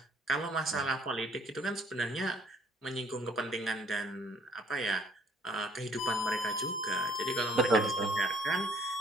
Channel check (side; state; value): both; normal; correlation 0.59